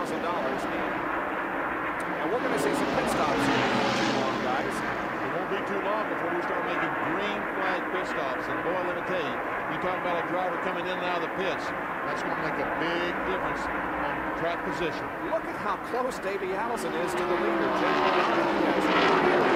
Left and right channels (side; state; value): both; identical; correlation 1.00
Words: And we're going to see some pit stops here before too long, guys. It won't be too long before we start making green flag pit stops. And boy, let me tell you, you talk about a driver coming in and out of the pits, that's going to make a big difference on track position. Look at how close Davey Allison is to the leader. Jeff Bodine, he has